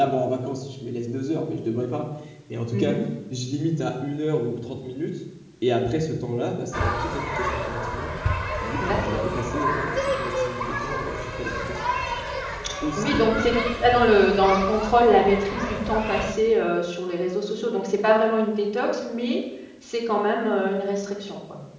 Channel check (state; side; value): identical; both; correlation 1.00